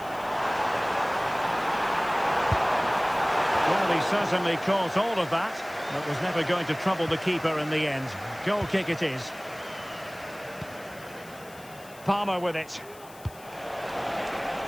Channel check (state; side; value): noise; left; hiss, 21 dB below the sound